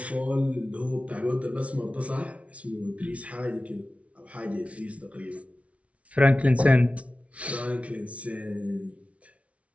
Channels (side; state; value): left; late; 0.064 ms